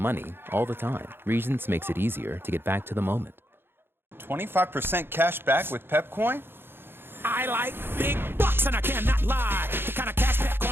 all the time. Regions makes it easier to get back to the moment. 25% cash back with Pepcoin? I like big bucks and I cannot lie. The kind of cash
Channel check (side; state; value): left; late; 0.10 ms